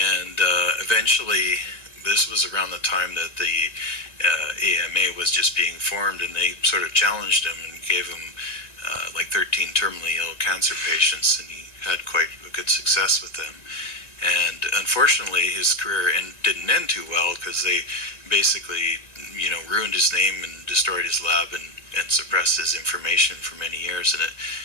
eventually, this was around the time that the AMA was just being formed, and they sort of challenged him and gave him like 13 terminally ill cancer patients, and he had quite a good success with them. And unfortunately, his career didn't end too well, because they basically, ruined his name and destroyed his lab and suppressed his information for many years. And it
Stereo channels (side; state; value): right; late; 1.9 ms